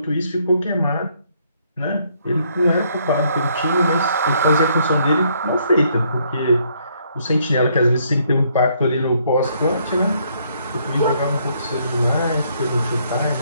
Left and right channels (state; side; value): inverted; both; correlation -0.69